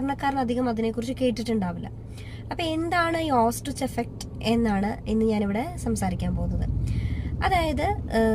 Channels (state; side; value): identical; both; correlation 1.00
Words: അധികം അതിനെക്കുറിച്ച് കേട്ടിട്ടുണ്ടാവില്ല. അപ്പോൾ എന്താണ് ഈ ഓസ്ട്രിച്ച് എഫക്റ്റ് എന്നാണ് ഇന്ന് ഞാനിവിടെ സംസാരിക്കാൻ പോകുന്നത്. അതായത്